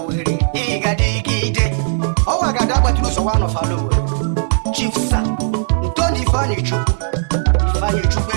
Higadigide, oh Agadagba Heroes one of Alowe, Chief Santoni Ifani Chukwu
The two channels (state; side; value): silent; left; 61 dB below the other